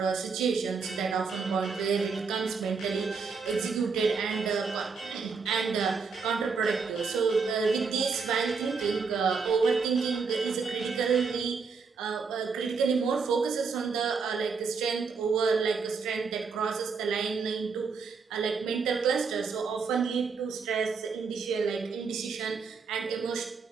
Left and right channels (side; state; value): left; quieter; 5.2 dB